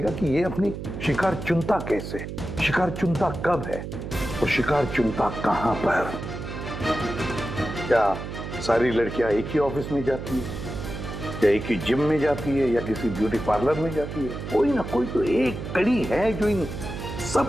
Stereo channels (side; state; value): right; noise; hum, 7 dB below the sound